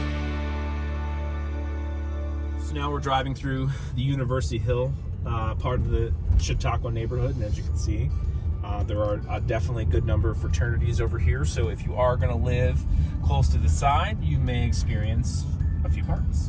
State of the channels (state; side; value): identical; both; correlation 1.00